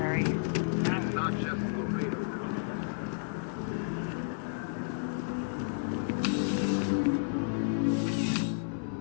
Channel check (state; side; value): silent; right; digital silence